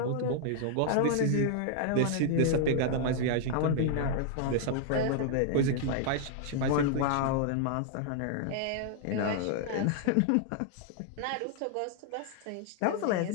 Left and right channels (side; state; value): both; different; correlation -0.01